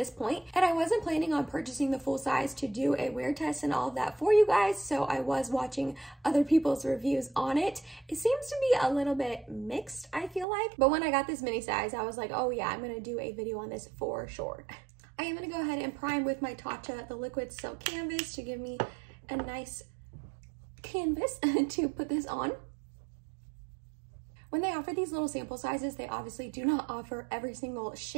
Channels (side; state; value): left; drops out; at 10.5 s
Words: point, and I wasn't planning on purchasing the full size to do a wear test and all of that for you guys, so I was watching other people's reviews on it. It seems to be a little bit mixed, I feel like, but when I got this mini size, I was like, oh yeah, I'm gonna do a video on this for sure. I am gonna go ahead and prime with my Tatcha, the liquid silk canvas, to give me a nice canvas to put this on. When they offer these little sample sizes, they obviously do not offer every single